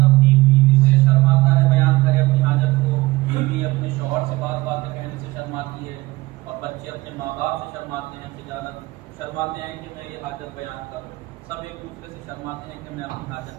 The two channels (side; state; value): left; quieter; 20.2 dB